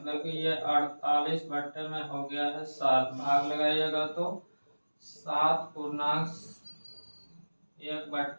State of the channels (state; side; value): inverted; both; correlation -1.00